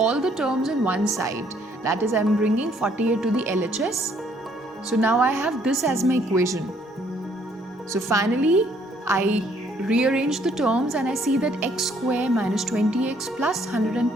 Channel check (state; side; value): normal; both; correlation 0.65